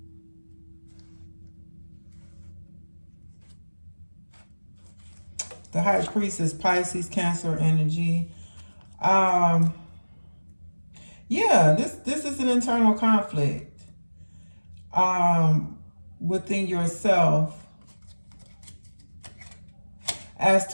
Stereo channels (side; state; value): both; inverted; correlation -1.00